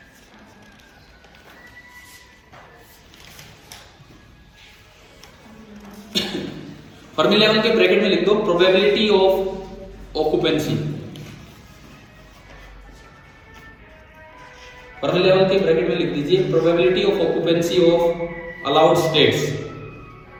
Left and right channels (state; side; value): identical; both; correlation 1.00